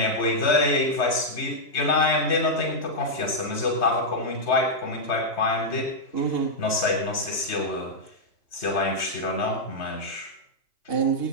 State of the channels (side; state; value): right; late; 3.3 ms